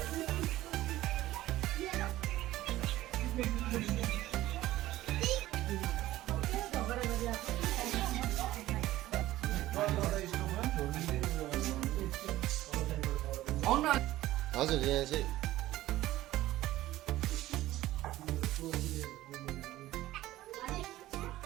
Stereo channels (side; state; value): left; quieter; 15.7 dB